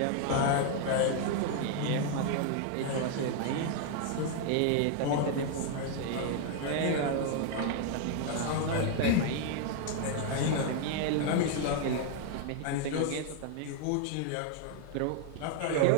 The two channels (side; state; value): both; different; correlation 0.00